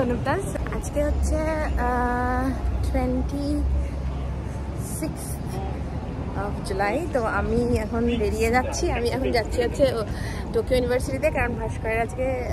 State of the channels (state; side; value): identical; both; correlation 1.00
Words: आज के হচ্ছে 26 জুলাই। তো আমি এখন বেরিয়ে যাচ্ছি। আমি এখন যাচ্ছি হচ্ছে টোকিও ইউনিভার্সিটিতে, কারণ ভাস্করের আজকে